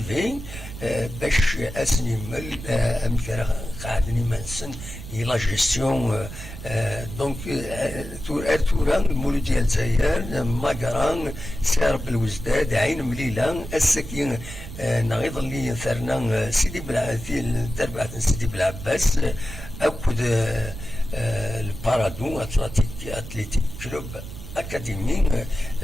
باش اسنيمل امثال قاعدني منسن لا جيستيون دونك توران المولود ديال الجزائر ماكران سارب الوزداد عين مليله السكين نغيض اللي ثرنا سيدي بلعثيل تربعة سيدي بالعباس اكد البارادو اتليتيك كلوب اكاديمي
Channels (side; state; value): right; noise; rumble, 11 dB below the sound